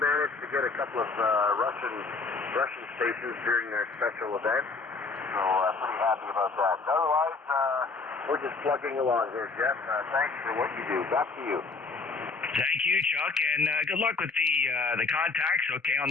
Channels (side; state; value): right; quieter; 4.1 dB